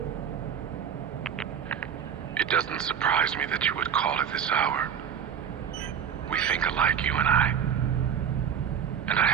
It doesn't surprise me that you would call at this hour. We think alike, you and I. And I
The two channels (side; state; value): left; quieter; 8.2 dB